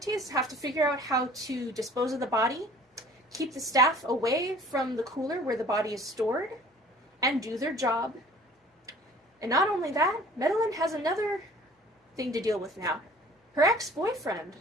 have to figure out how to dispose of the body, keep the staff away from the cooler where the body is stored, and do their job. And not only that, Madeline has another thing to deal with now. Her ex-boyfriend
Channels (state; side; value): normal; both; correlation 0.50